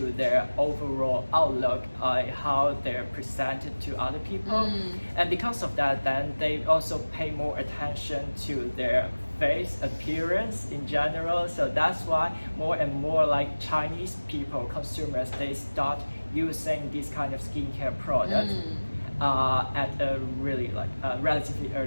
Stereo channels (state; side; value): inverted; both; correlation -1.00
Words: their overall outlook, how they're presented to other people. And because of that, then they also pay more attention to their face appearance in general. So that's why more and more like Chinese people, consumers, they start using this kind of skincare product at a really like relatively